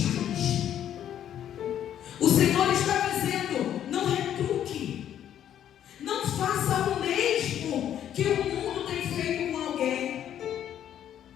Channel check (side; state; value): right; quieter; 10.4 dB